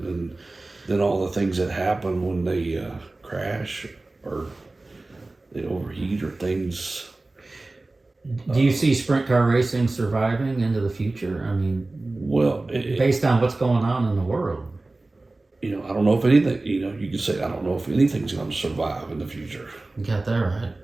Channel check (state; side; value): quieter; left; 3.1 dB